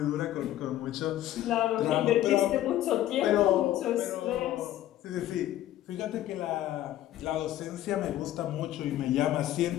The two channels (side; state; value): right; quieter; 13.3 dB